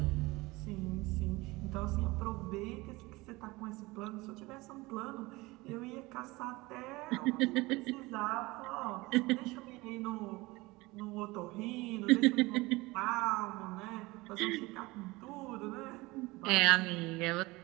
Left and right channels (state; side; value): quieter; left; 21.9 dB